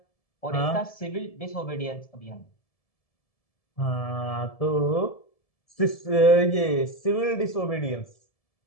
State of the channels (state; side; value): late; right; 1.7 ms